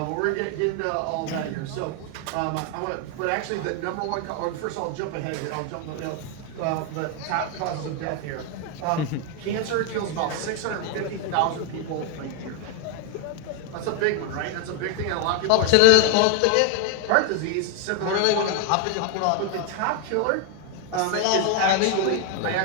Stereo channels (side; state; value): both; different; correlation 0.01